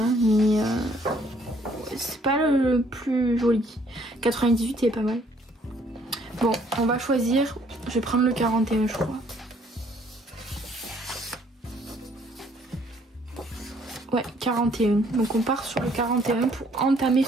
Mais c'est pas le plus joli. 98 il est pas mal. Bon, on va choisir. Je vais prendre le 41 je crois. Ouais, 41. Donc on part sur le 41 pour entamer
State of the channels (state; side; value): normal; both; correlation 0.63